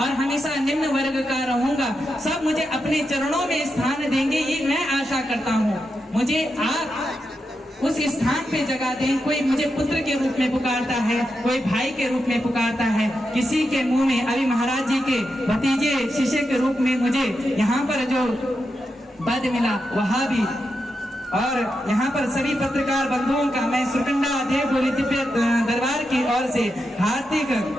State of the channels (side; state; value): both; normal; correlation 0.87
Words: हमेशा निम्न वर्ग का रहूंगा। सब मुझे अपने चरणों में स्थान देंगे, ये मैं आशा करता हूँ। मुझे आप उस स्थान पे जगह दें। कोई मुझे पुत्र के रूप में पुकारता है, कोई भाई के रूप में पुकारता है, किसी के मुंह में अभी महाराज जी के भतीजे शिष्य के रूप में मुझे यहाँ पर जो पद मिला वह भी। और यहाँ पर सभी पत्रकार बंधुओं का मैं सुरकंडा देव डोली दिव्य दरबार की ओर से हार्दिक